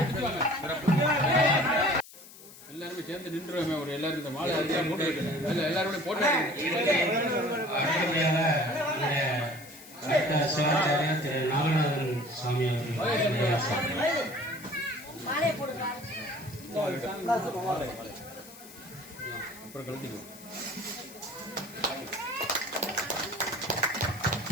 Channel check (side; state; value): left; noise; hiss, 19 dB below the sound